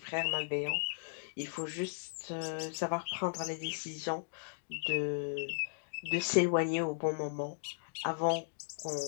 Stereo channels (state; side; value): silent; right; digital silence